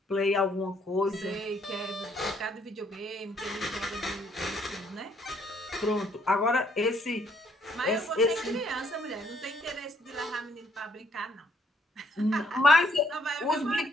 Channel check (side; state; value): both; normal; correlation 0.68